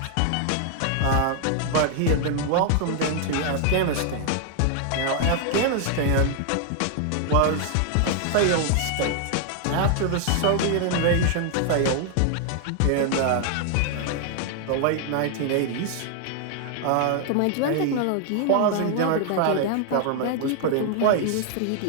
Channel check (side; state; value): both; different; correlation 0.00